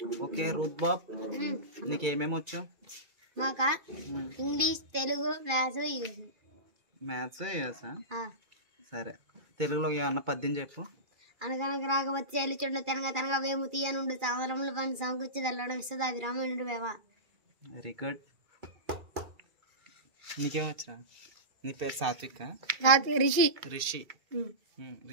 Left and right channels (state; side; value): late; left; 2.4 ms